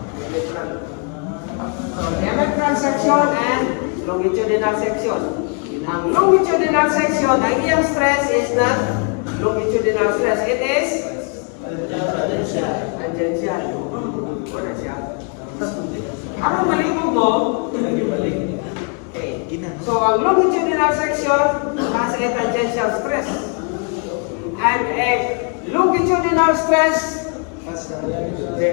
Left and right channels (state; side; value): quieter; right; 38.9 dB